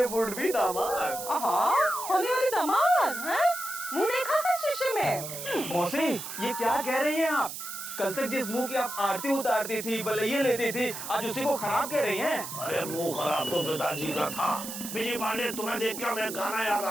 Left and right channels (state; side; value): noise; right; hiss, 8 dB below the sound